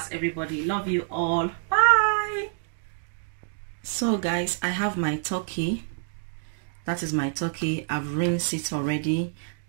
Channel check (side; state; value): left; silent; digital silence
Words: everybody. Love you all. Bye. So guys, I have my turkey. That is my turkey. I've rinsed it already.